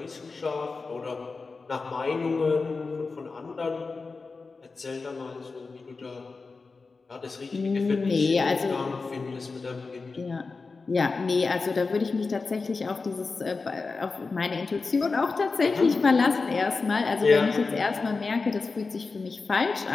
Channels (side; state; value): right; quieter; 4.2 dB